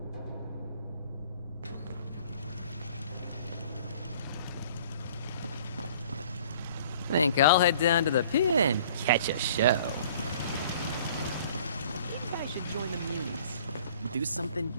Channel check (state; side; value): inverted; both; correlation -0.52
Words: Think I'll head down to the pier and catch a show. I should join the Munis. Do something